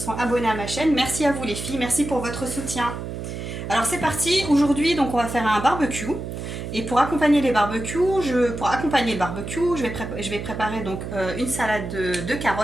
sont abonnés à ma chaîne. Merci à vous les filles, merci pour votre soutien. Alors c'est parti, aujourd'hui donc on va faire un barbecue. Et pour accompagner le barbecue, je vais préparer donc une salade de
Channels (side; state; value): right; noise; hum, 7 dB below the sound